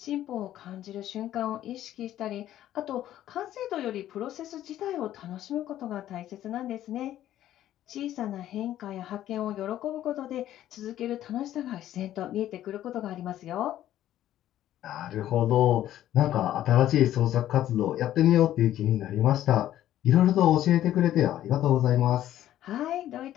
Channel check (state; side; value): quieter; right; 12.6 dB